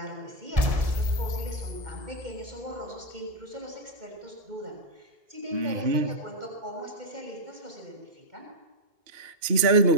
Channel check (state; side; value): late; left; 2.8 ms